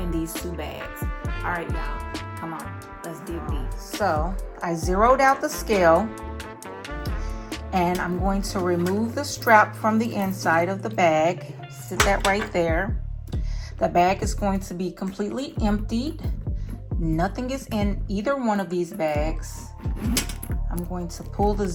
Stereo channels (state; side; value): identical; both; correlation 1.00